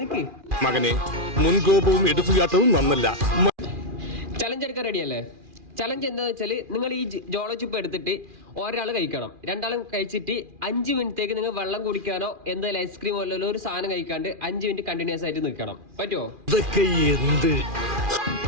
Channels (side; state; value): left; late; 2.4 ms